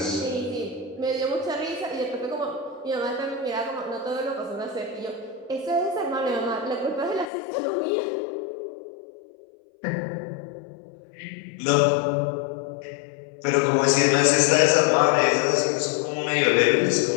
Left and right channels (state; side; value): drops out; right; at 7.3 s